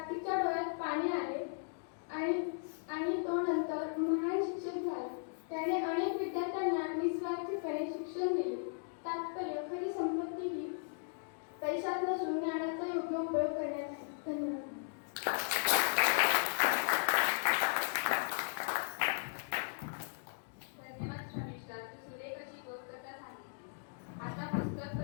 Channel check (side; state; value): right; silent; digital silence